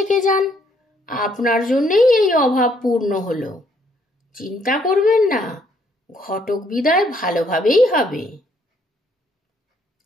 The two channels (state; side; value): normal; both; correlation 0.68